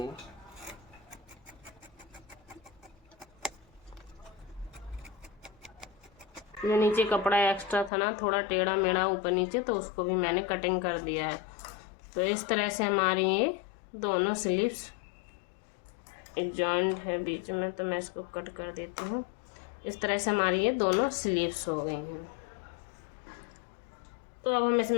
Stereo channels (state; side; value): drops out; right; at 7.9 s